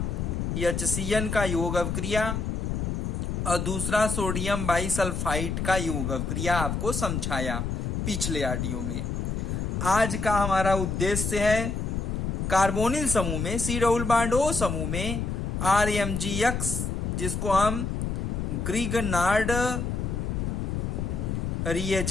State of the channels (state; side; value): noise; left; rumble, 2 dB below the sound